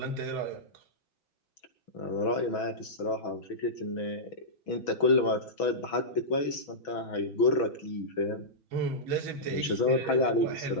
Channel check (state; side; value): late; right; 6.1 ms